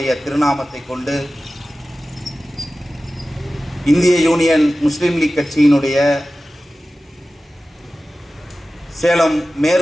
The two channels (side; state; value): both; normal; correlation 0.95